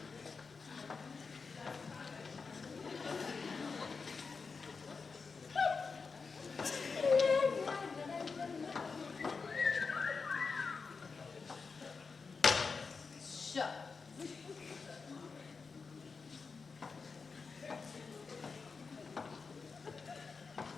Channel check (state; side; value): quieter; right; 4.8 dB